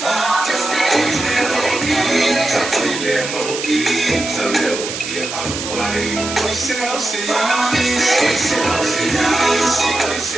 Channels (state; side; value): noise; right; hiss, 6 dB below the sound